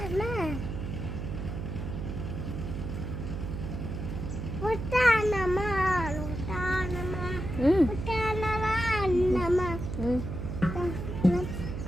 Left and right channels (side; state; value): right; noise; hum, 6 dB below the sound